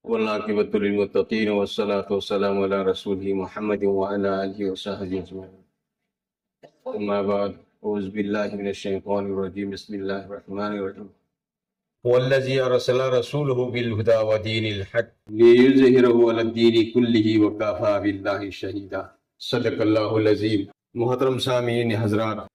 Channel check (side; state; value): both; identical; correlation 1.00